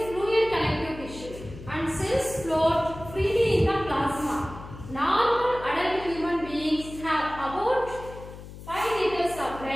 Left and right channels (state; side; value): noise; left; hum, 14 dB below the sound